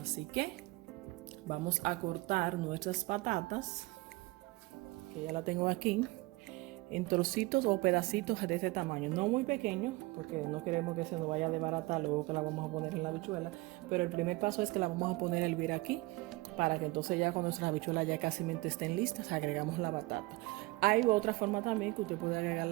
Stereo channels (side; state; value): left; quieter; 22.1 dB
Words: Así que vamos a cortar nuestras patatas, que ya la tengo aquí, en trocitos o pedacitos de este tamaño, no muy pequeños, porque no queremos que se nos vaya a desbaratar luego que la vamos a poner en la habichuela. Pero el primer paso es que la vamos a poner a hervir aquí, para que entonces ya cuando nuestras habichuelas ya casi estén listas, agregamos la batata. Hay otra forma también que usted puede